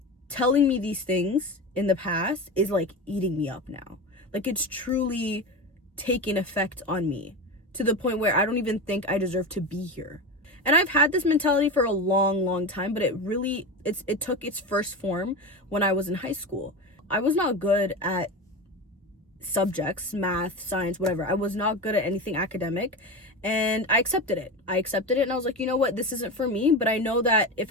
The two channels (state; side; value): normal; both; correlation 0.23